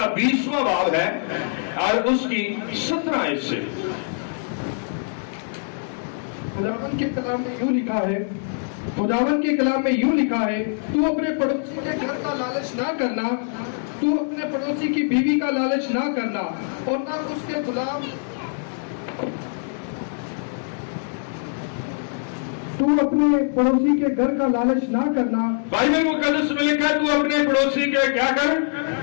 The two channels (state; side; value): silent; right; 63 dB below the other